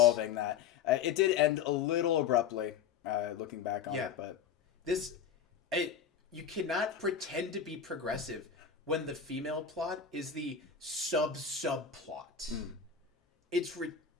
that. It did end a little abruptly, looking back on it. But you cannot pretend to be progressive when the female plot is the subplot. It's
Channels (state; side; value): quieter; right; 7.3 dB